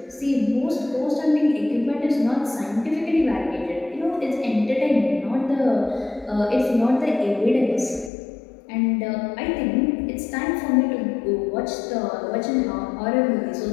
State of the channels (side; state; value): right; drops out; at 8.1 s